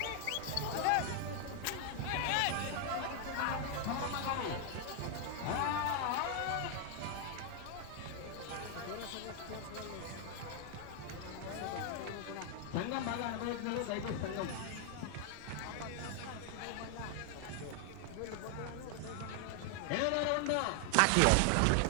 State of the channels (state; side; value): different; both; correlation 0.00